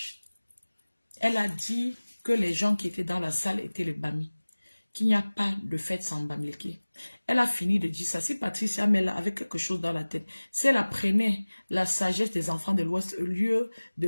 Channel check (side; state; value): both; inverted; correlation -1.00